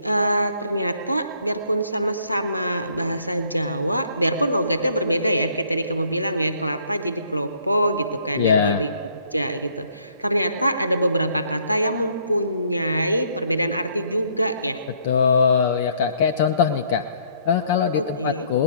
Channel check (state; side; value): inverted; both; correlation -0.64